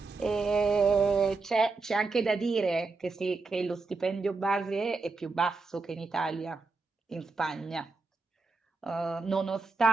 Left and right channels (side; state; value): left; quieter; 3.9 dB